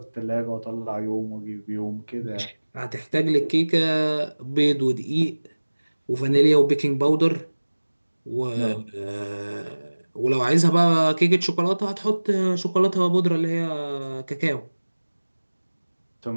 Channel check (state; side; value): inverted; both; correlation -1.00